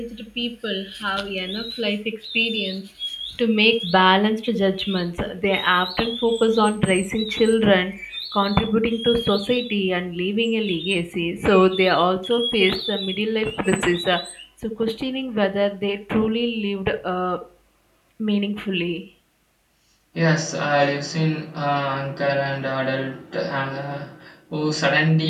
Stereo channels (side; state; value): both; identical; correlation 1.00